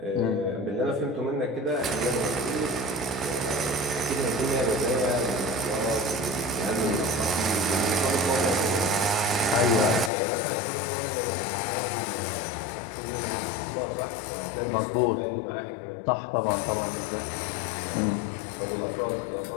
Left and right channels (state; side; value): drops out; right; at 10.1 s